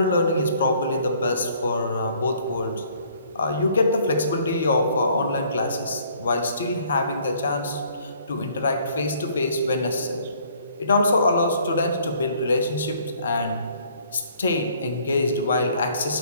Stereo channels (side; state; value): both; inverted; correlation -0.60